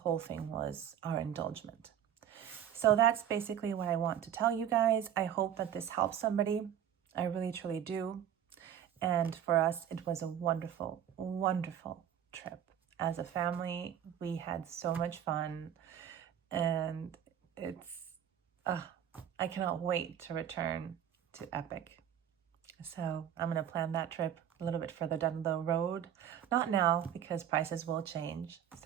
thing was our indulgement. So that's basically what I want to tell you guys. I hope that this helps somebody. I really, truly do. And for us, it was a wonderful, wonderful trip. As a family, we had so much fun. And it's, I cannot wait to return to Epic. So I'm going to plan that trip a little bit further down the road. Not now, because prices will change.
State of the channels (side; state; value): left; quieter; 9.7 dB